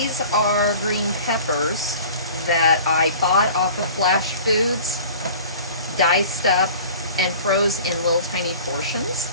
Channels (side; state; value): both; inverted; correlation -0.43